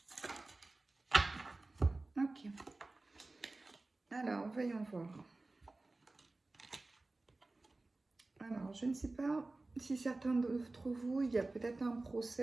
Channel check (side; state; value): left; quieter; 3.2 dB